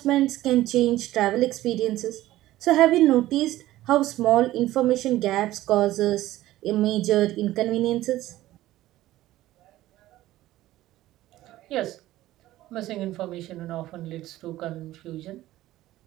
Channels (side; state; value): left; quieter; 15.5 dB